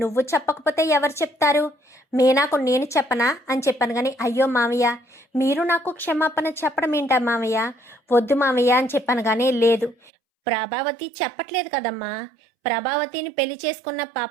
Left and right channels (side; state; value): left; drops out; at 10.0 s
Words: చెప్పకపోతే ఎవరు చెప్తారు? మీనాకు నేను చెప్పనా అని చెప్పాను. కానీ అయ్యో మామయ్య, మీరు నాకు క్షమాపణ చెప్పడం ఏంటా మామయ్య, వద్దు మామయ్య అని చెప్పాను. కానీ లేదు, ప్రభావతి చెప్పట్లేదు కదమ్మా. ప్రభావతిని పెళ్లి చేసుకున్న